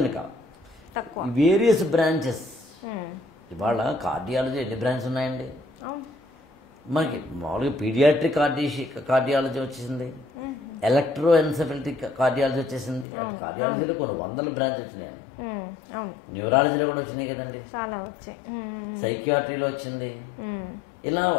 కాదు, వేరియస్ బ్రాంచెస్. ఇవాళ కార్డియాలజీ ఎన్ని బ్రాంచెస్ ఉన్నాయండి మనకి? మామూలుగా పీడియాట్రిక్ కార్డియాలజీ వచ్చేసింది, ఎలక్ట్రోఎన్సెఫలిటిక్ కార్డియాలజీ వచ్చేసింది. అటు కార్డియాలజీలో కొన్ని వందల బ్రాంచ్ వచ్చినాయి. న్యూరాలజీలో కూడా వచ్చినాయి కదండి, చాలా వచ్చాయి. సైకియాట్రీలో వచ్చింది. ఇలా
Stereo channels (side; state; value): right; drops out; at 13.1 s